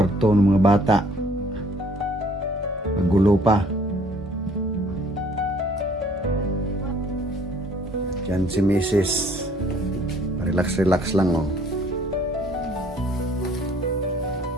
ng mga bata, magulo pa. Diyan si Mrs. Relax lang, oh.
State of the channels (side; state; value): both; normal; correlation 0.58